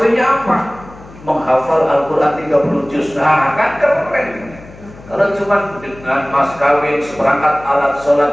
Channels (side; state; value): left; noise; hum, 20 dB below the sound